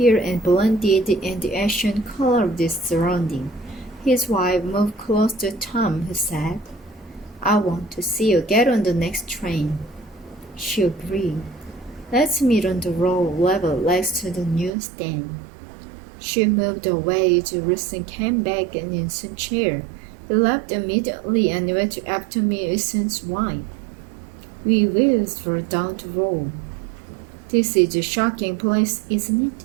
and blended in the ashen color of the surrounding. His wife moved close to Tom, who said, I want to see you get on the next train. She agreed. Let's meet on the road level next to the newsstand. She moved away as Wilson came back in his chair. He left immediately and went after me, Wilson's wife. We wheels were down the road. This is a shocking place, isn't it?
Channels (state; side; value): drops out; left; at 14.7 s